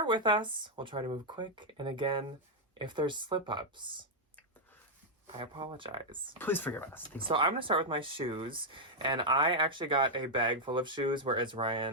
with us. We'll try to move quick. And again, if there's slip-ups, I apologize. Please forgive us. So I'm going to start with my shoes. And I actually got a bag full of shoes, whereas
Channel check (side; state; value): both; normal; correlation -0.04